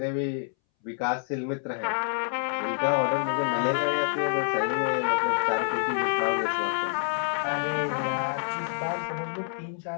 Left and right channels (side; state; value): right; silent; 60 dB below the other